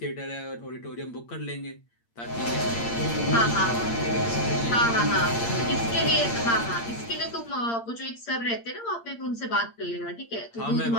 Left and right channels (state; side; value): late; right; 8.7 ms